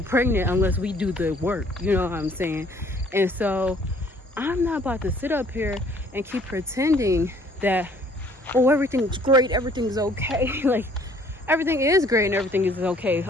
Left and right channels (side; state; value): both; normal; correlation 0.58